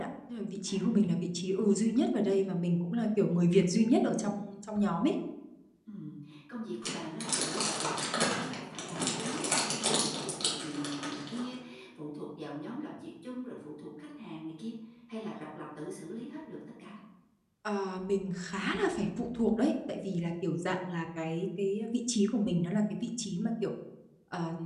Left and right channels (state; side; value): identical; both; correlation 1.00